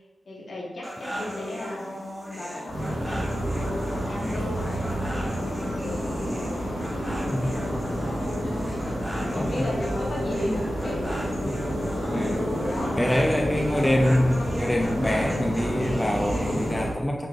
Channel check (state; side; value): normal; both; correlation 0.94